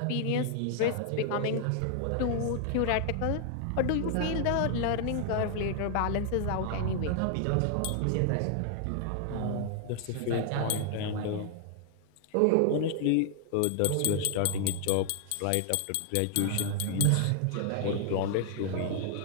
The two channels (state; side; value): different; both; correlation 0.00